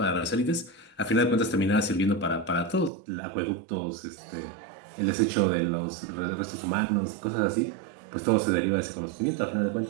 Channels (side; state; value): left; drops out; at 2.9 s